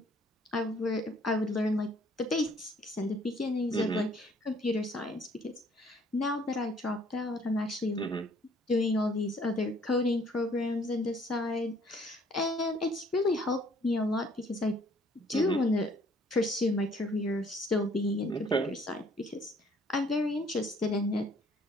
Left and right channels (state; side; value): normal; both; correlation 0.61